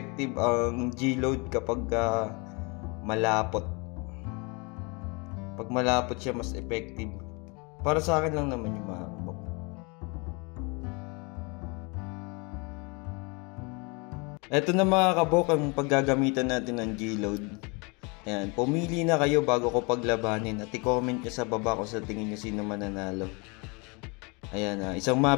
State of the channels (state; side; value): quieter; right; 30.1 dB